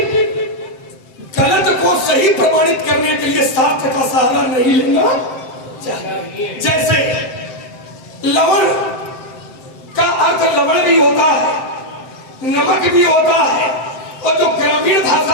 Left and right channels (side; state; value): right; late; 7.8 ms